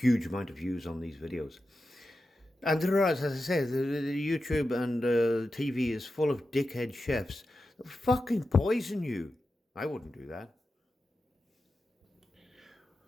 amount of views on these videos. And there are, as I say, the YouTube and TV is full of dickhead chefs that fucking poison you. I wouldn't do that.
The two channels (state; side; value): normal; both; correlation 0.91